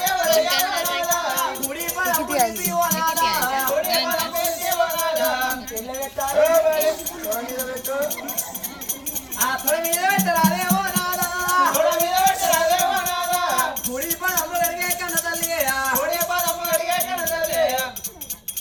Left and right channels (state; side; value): identical; both; correlation 1.00